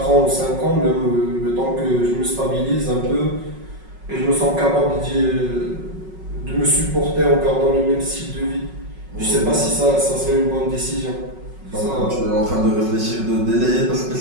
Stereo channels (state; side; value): late; left; 5.4 ms